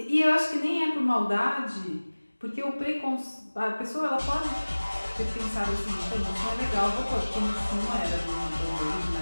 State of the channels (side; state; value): both; inverted; correlation -1.00